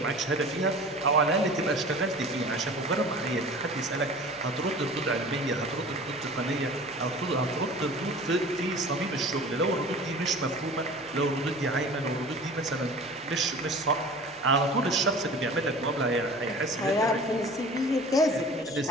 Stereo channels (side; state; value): right; noise; hum, 29 dB below the sound